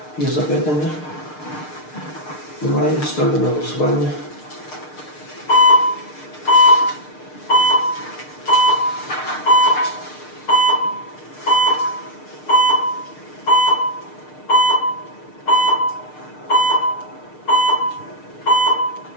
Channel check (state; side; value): late; right; 6.6 ms